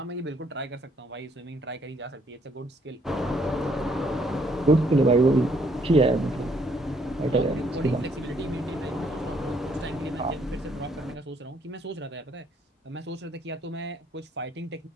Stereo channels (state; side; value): normal; both; correlation 0.68